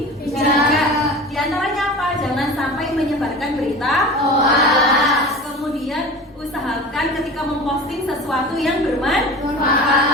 bijak. Di antaranya apa? Jangan sampai menyebarkan berita hoax. Kemudian usahakan ketika memposting sesuatu yang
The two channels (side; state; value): both; normal; correlation 0.35